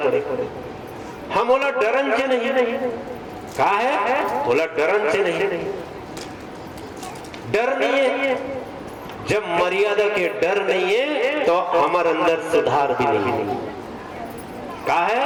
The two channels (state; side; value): identical; both; correlation 1.00